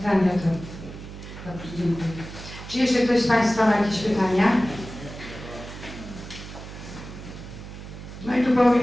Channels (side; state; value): right; noise; hum, 12 dB below the sound